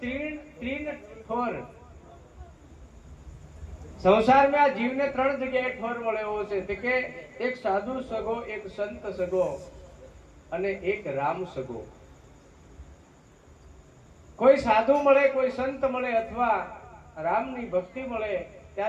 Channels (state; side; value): identical; both; correlation 1.00